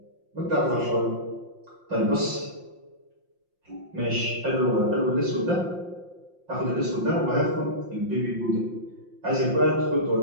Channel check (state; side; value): late; left; 5.7 ms